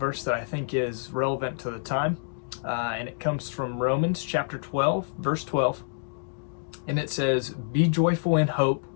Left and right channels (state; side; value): silent; right; digital silence